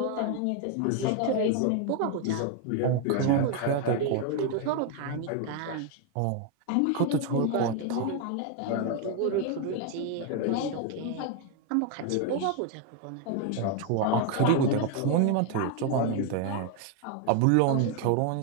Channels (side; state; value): both; different; correlation 0.01